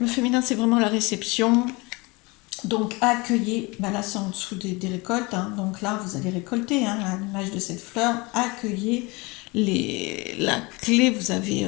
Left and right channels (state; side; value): quieter; right; 25.5 dB